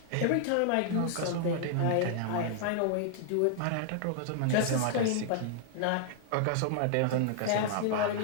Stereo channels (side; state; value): both; different; correlation -0.01